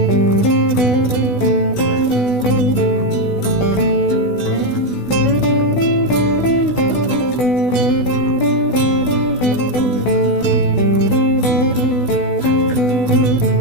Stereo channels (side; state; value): right; late; 16 ms